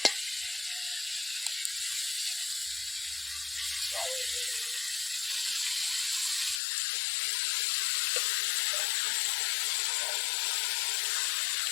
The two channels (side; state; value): right; drops out; at 6.6 s